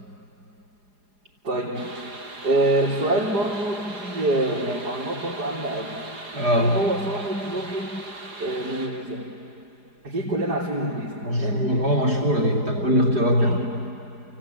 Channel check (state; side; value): late; left; 4.9 ms